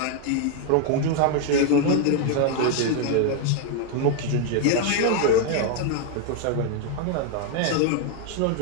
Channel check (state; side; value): different; both; correlation 0.01